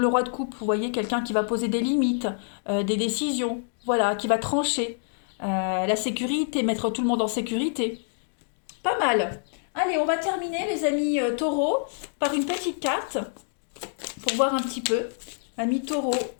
roi de coupe, vous voyez, quelqu'un qui va poser des limites, des décisions, voilà, qui va trancher. La sécurité, mettre tout le monde en sécurité. Pas mal. Allez, on va terminer, les amis taureaux, par une petite carte pour voir un petit peu. Amis taureaux,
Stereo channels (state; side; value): silent; right; 61 dB below the other